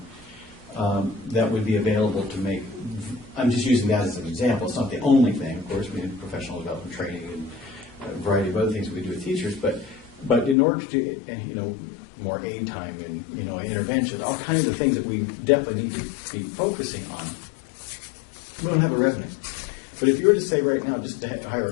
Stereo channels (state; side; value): drops out; right; at 10.6 s